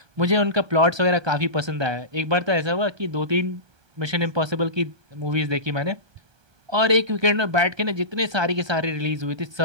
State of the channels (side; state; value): left; late; 1.2 ms